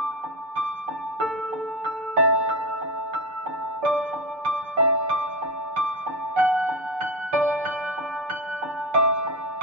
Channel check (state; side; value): late; left; 6.7 ms